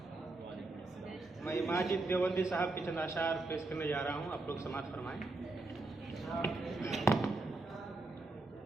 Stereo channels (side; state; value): left; quieter; 3.2 dB